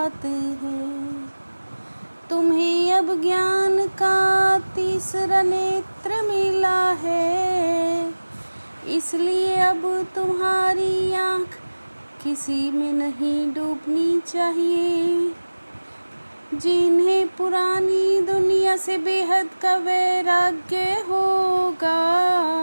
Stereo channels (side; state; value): both; inverted; correlation -1.00